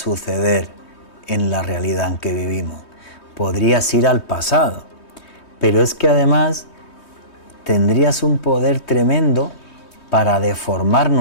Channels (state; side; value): late; right; 3.2 ms